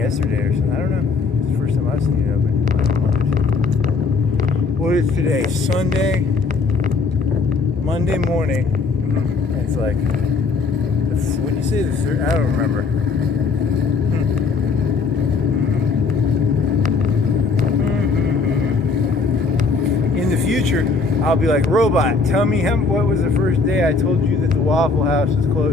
or something. I don't know. It's the first time I've seen it open. What is today? Sunday, Monday morning. It's like, when you say the third, I don't remember. In the future, I'll be like, robot, tell me what was the first day I told you that the Waffle House was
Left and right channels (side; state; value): right; quieter; 4.3 dB